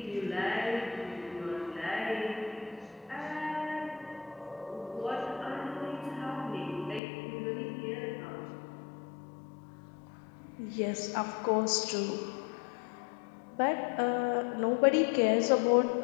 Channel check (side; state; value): right; drops out; at 7.0 s